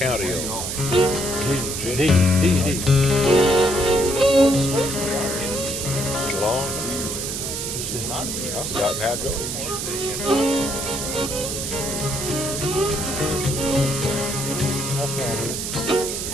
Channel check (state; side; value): noise; right; hiss, 4 dB below the sound